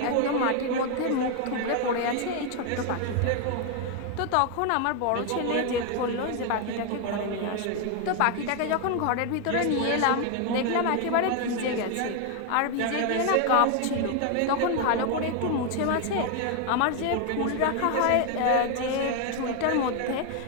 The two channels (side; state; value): both; different; correlation 0.01